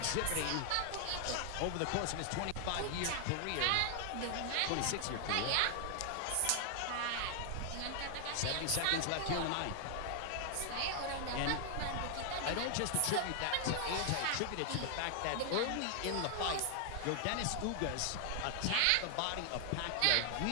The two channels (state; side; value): different; both; correlation 0.00